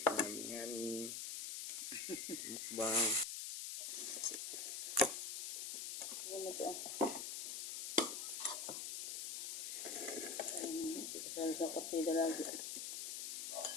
Yummy. Mukbang. Sa partida lagi.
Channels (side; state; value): left; noise; hiss, 3 dB below the sound